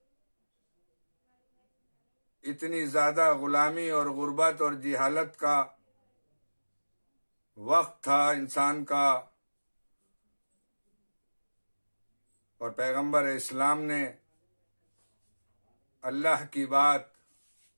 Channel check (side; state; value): both; inverted; correlation -1.00